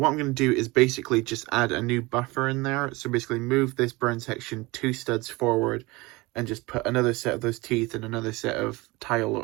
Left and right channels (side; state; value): left; quieter; 23.0 dB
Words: to do is basically just add a new buffer in there. So basically move this brown section 2 studs forward and just put another set of those teeth and another set of tile